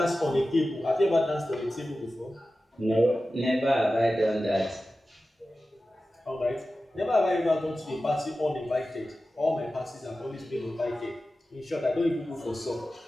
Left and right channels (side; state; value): both; normal; correlation 0.94